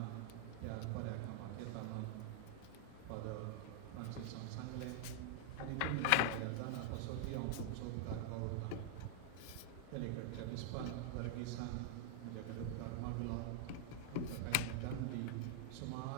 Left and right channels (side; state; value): both; different; correlation 0.00